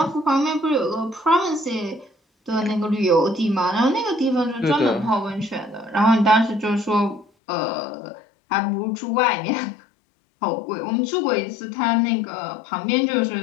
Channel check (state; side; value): drops out; right; at 7.2 s